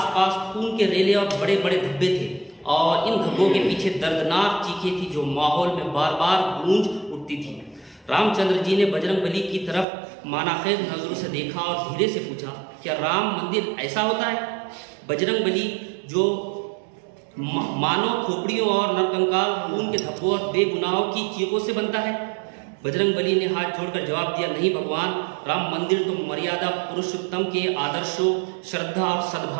खून के रेले और बड़े बड़े धब्बे थे और इन धब्बों के पीछे दर्दनाक चीखें थी जो माहौल में बार बार गूंज उठती थी। रामचंद्र जी ने बजरंगबली की तरफ मानाखेज नजरों से देखा और धीरे से पूछा, क्या राम मंदिर ऐसा होता है? बजरंगबली जो मानव खोपड़ियों और नरकंकाल, खून के धब्बों और बेगुनाहों की चीखों से बनता है? बजरंगबली ने हाथ जोड़कर जवाब दिया, नहीं भगवान, राम मंदिर तो मर्यादा पुरुषोत्तम के आदर्शों, श्रद्धा और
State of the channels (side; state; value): left; drops out; at 9.9 s